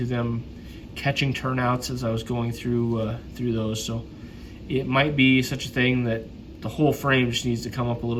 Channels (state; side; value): identical; both; correlation 1.00